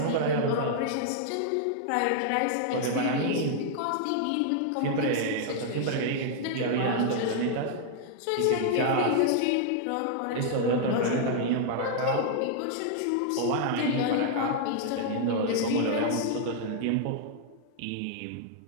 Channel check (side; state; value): both; different; correlation -0.01